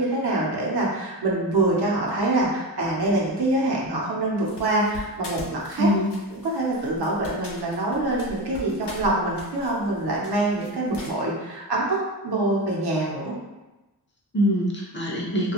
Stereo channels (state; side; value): normal; both; correlation 0.22